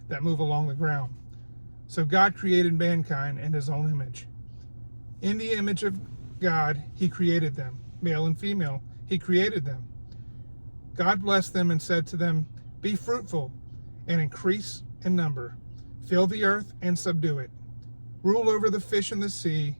that move along the ground." So God created mankind in his own image. In the image of God, he created them. Male and female, he created them. God blessed them and said to them, "Be fruitful and increase in number. Fill the earth and subdue it. Rule over the fish in the sea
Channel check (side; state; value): both; inverted; correlation -1.00